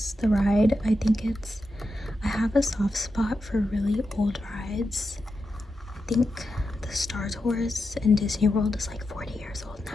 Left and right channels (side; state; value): both; normal; correlation 0.88